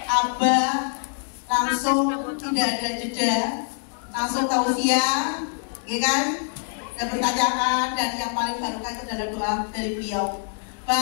Abah langsung tidak ada jeda, langsung tausiah, ya kan? Dan pertanyaan, dan yang paling barokah itu adalah doa dari beliau.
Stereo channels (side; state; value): right; silent; 56 dB below the other